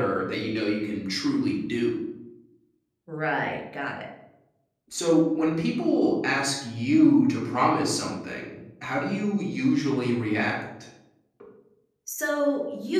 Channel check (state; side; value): identical; both; correlation 1.00